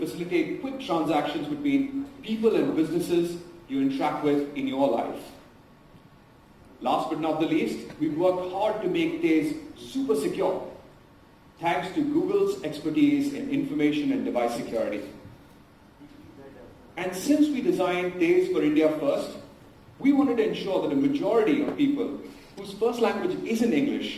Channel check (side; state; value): both; identical; correlation 1.00